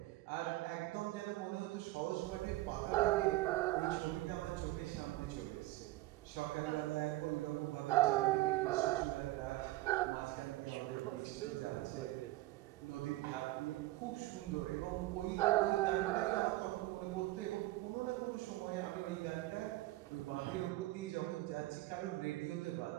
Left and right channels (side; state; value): left; quieter; 18.1 dB